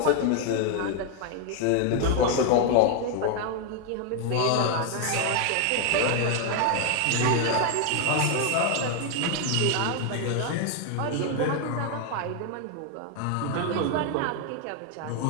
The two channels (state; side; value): different; both; correlation 0.01